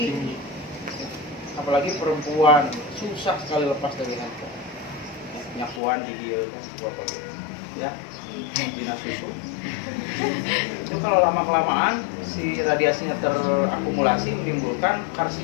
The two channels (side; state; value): right; drops out; at 5.8 s